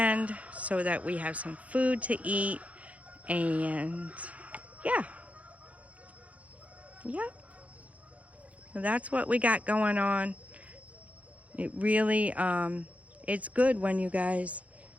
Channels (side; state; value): left; late; 0.067 ms